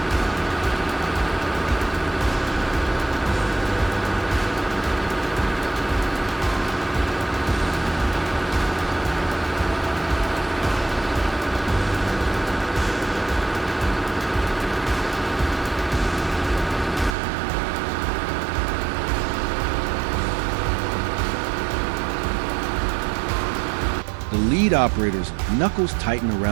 The lead operator's knuckles tighten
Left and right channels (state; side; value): drops out; left; at 17.2 s